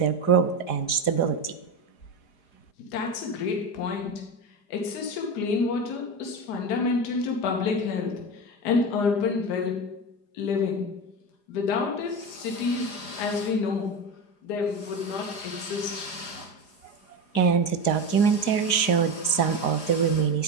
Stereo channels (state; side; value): late; right; 4.9 ms